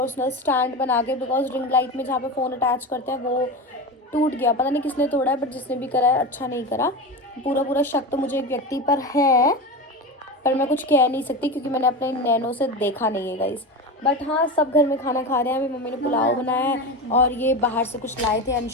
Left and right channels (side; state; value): both; normal; correlation 0.23